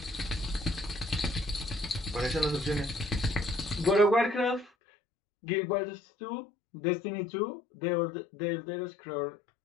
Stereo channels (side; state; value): right; drops out; at 4.7 s